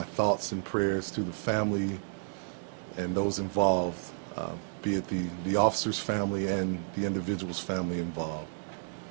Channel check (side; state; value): left; silent; digital silence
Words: thoughts and prayers to the family and those involved, be it the officer's family and the individual's family involved.